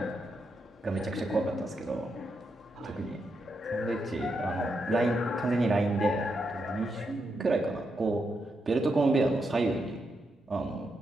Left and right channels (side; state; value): both; normal; correlation 0.83